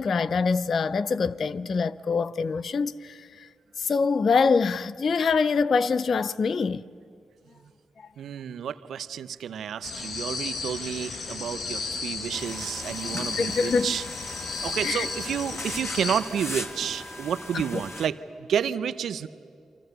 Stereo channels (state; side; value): normal; both; correlation 0.79